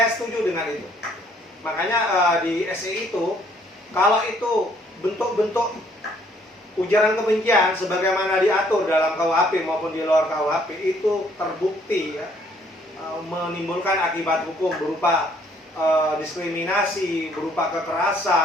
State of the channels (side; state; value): both; normal; correlation 0.64